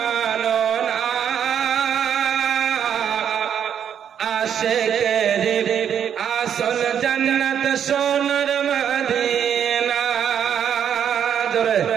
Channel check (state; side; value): quieter; left; 8.7 dB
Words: না। আশিকের আসল জান্নাত সোনার মদিনা। জোরে